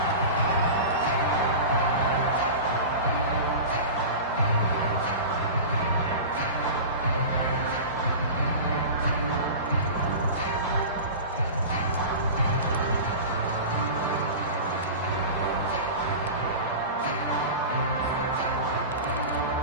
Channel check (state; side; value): inverted; both; correlation -0.31